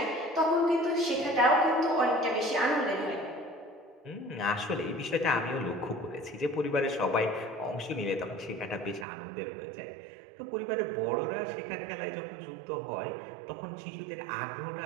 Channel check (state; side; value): drops out; left; at 9.1 s